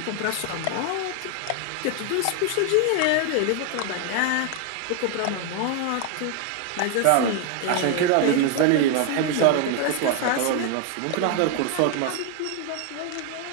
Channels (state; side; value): different; both; correlation 0.01